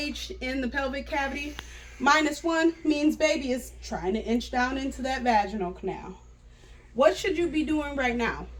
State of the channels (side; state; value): both; identical; correlation 1.00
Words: in the pelvic cavity. -1 means baby is trying to inch down into that vaginal canal. What should you be doing right now?